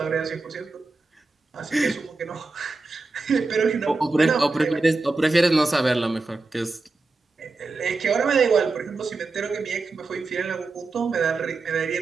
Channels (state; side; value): quieter; left; 3.7 dB